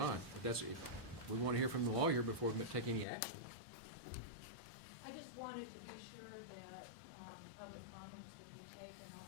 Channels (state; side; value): drops out; right; at 3.1 s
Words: but if we want to hear from the lawyer before we take any action. I just wanted to be sure that public comments would be taken on